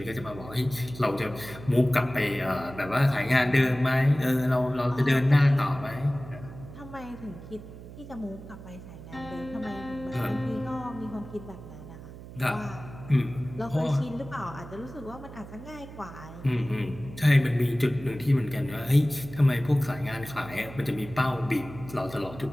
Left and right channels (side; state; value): right; noise; hum, 15 dB below the sound